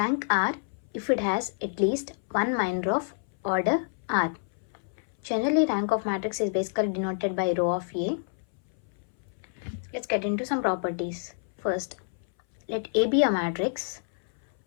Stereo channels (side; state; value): right; silent; 58 dB below the other